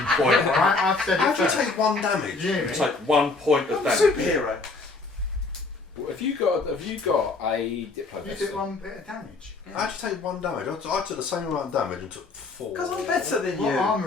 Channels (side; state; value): right; quieter; 3.7 dB